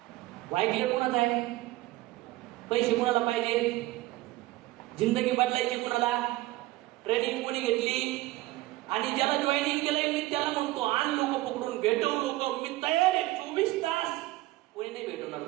वाय कोणाचा आहे? पैसे कोणाला पाहिजे? जिंदगी बदलायची कोणाला? ट्रेनिंग कोणी घेतली? आणि ज्याला जॉईनिंग केलंय मी त्याला म्हणतो, आण लोक पकडून, भेटव लोक, मी तयार आहे 24 तास. कोणी नाही भेटवणार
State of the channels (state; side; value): quieter; left; 18.3 dB